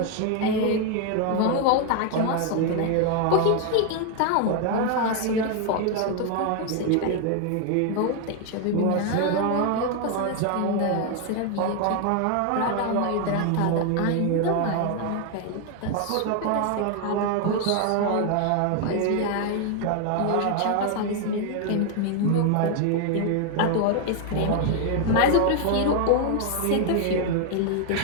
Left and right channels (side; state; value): both; different; correlation 0.01